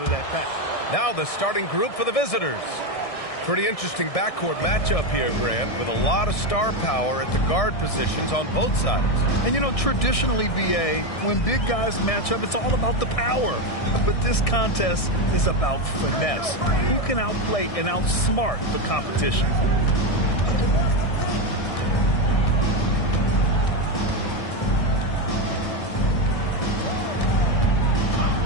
of that pack. Now the starting group for the visitors. Pretty interesting backcourt matchup here, Grant, with a lot of star power at the guard positions on both sides. And, you know, traditionally, B.A., when big guys match up, it's all about the power. But this contest is about finesse. Who can outplay and outsmart the competition?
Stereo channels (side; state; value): right; late; 1.6 ms